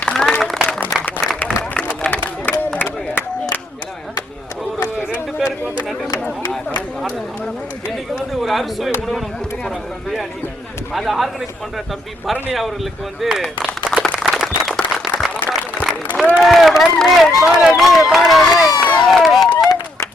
ஒரு 2 பேருக்கு வந்து நன்றி சொல்லணும். இன்னைக்கு வந்து ஒரு அறுசுவை உணவு நம்ம கொடுக்க போறாங்க, பிரியாணி. அதை ஆர்கனைஸ் பண்ற தம்பி பரணி அவர்களுக்கு வந்து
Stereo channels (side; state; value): both; normal; correlation 0.73